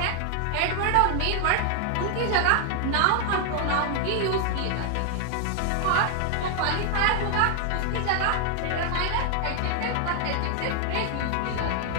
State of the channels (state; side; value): different; both; correlation 0.00